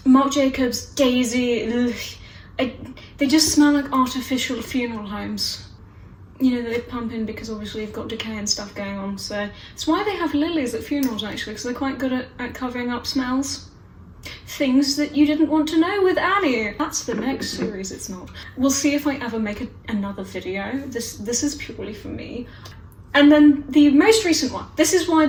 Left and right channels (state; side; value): identical; both; correlation 1.00